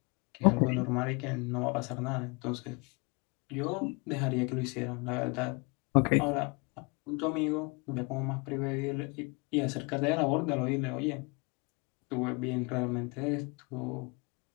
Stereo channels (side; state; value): right; quieter; 29.7 dB